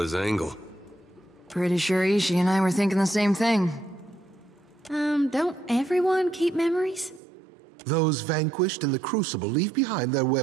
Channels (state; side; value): drops out; left; at 7.2 s